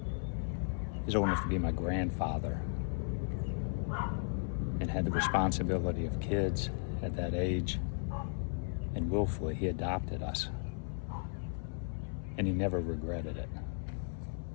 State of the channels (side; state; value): right; silent; 54 dB below the other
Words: old enough to be my grandfather and had the responsibility of kids at that age, and willfully he adopted us, and he never regretted it.